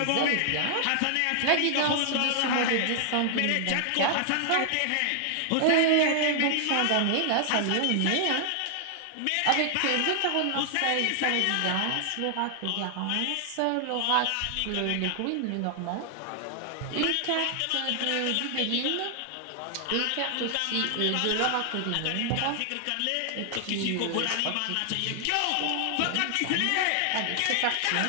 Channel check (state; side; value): different; both; correlation 0.00